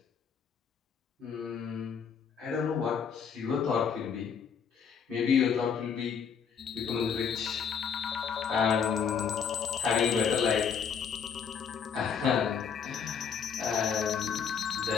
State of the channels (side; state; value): right; quieter; 6.9 dB